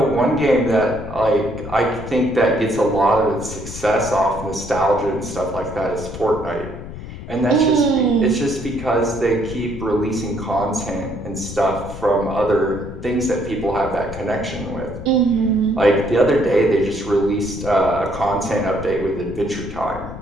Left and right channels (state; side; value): noise; left; rumble, 11 dB below the sound